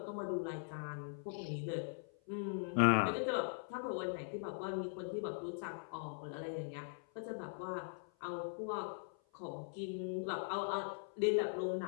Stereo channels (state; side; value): silent; right; 50 dB below the other